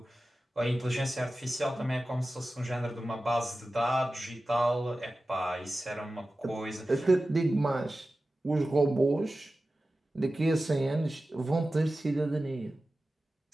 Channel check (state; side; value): normal; both; correlation 0.95